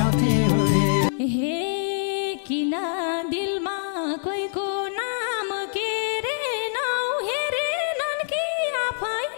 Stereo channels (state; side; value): silent; right; digital silence